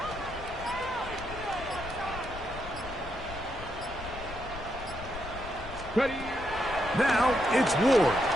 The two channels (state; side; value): noise; left; rumble, 12 dB below the sound